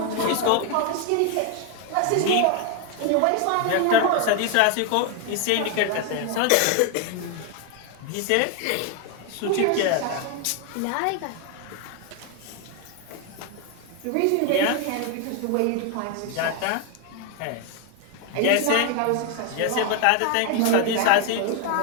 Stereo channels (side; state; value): both; different; correlation 0.01